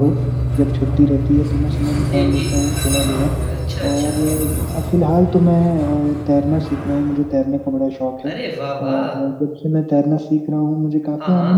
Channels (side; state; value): both; identical; correlation 1.00